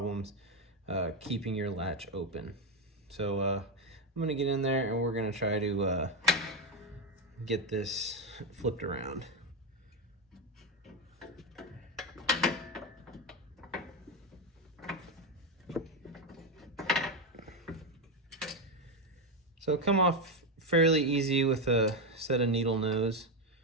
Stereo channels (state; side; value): normal; both; correlation 0.09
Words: keeping your latch open. So I'm gonna get in there and we're gonna try to get this flipped around. So come off fairly easy with a set of needle nose.